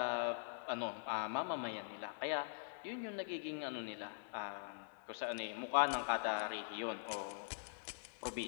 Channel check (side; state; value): right; silent; digital silence